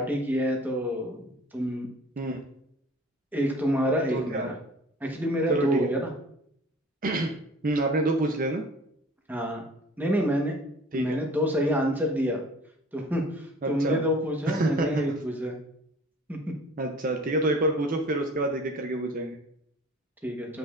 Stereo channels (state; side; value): normal; both; correlation 0.47